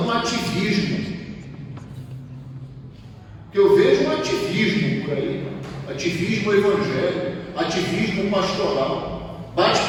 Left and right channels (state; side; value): identical; both; correlation 1.00